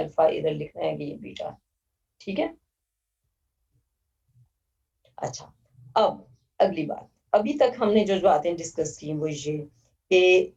अल्फा, इधर लिखना है कि ये बीटा। ठीक है। अच्छा, अब अगली बात। अभी तक हमने जो बातें डिस्कस की वो ये कि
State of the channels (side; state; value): both; identical; correlation 1.00